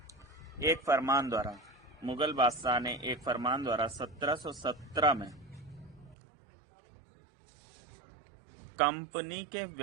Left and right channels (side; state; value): left; drops out; at 6.2 s